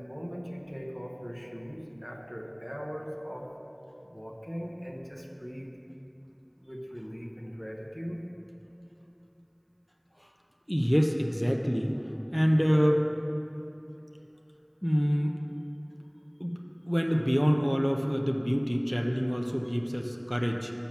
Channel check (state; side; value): identical; both; correlation 1.00